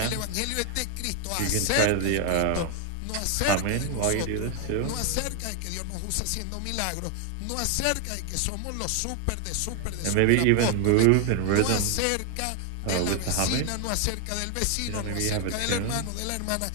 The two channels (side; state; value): both; different; correlation 0.00